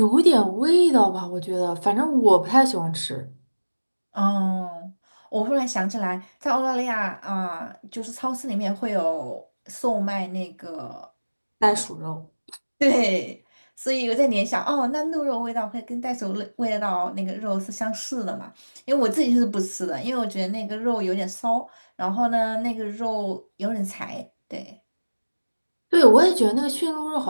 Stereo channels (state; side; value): inverted; both; correlation -1.00